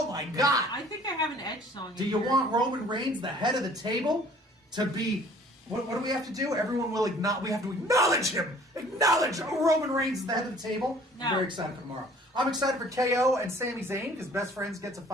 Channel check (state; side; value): normal; both; correlation 0.53